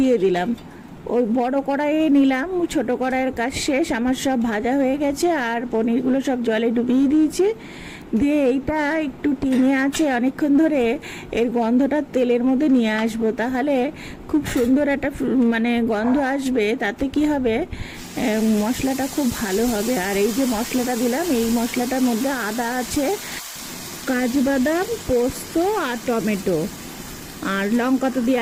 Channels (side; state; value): both; identical; correlation 1.00